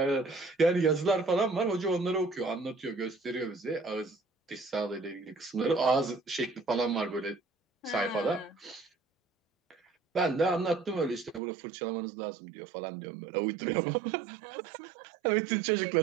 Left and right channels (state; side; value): drops out; left; at 11.4 s